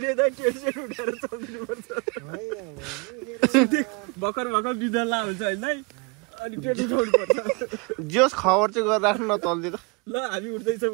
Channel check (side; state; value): left; quieter; 30.9 dB